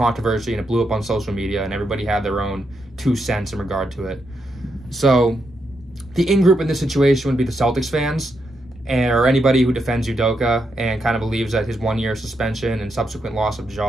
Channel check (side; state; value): both; normal; correlation 0.82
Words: and it blew up on social media, and everybody had their own 2 cents in regard to it. So the in-group in this situation would be the Celtics fans, or anybody who defends Udoka and kind of believes that his 1-year suspension and subsequent loss of